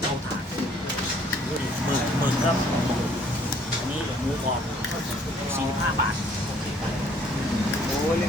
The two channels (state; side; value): normal; both; correlation 0.60